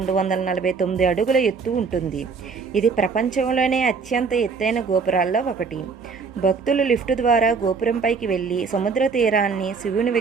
అడుగుల ఎత్తు ఉంటుంది. ఇది ప్రపంచంలోనే అత్యంత ఎత్తైన గోపురాల్లో ఒకటి. భక్తులు లిఫ్ట్ ద్వారా గోపురంపైకి వెళ్ళి సముద్ర తీరాన్ని, శివుని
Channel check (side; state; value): left; quieter; 5.1 dB